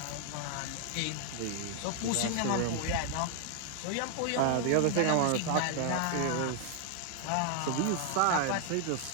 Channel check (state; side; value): different; both; correlation 0.00